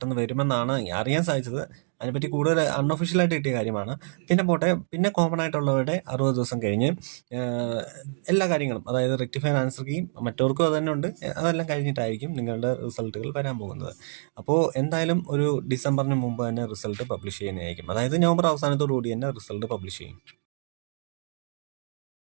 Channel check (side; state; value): left; silent; 60 dB below the other